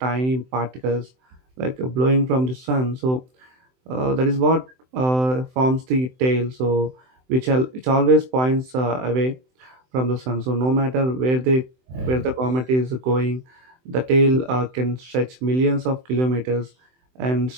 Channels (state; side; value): late; left; 23 ms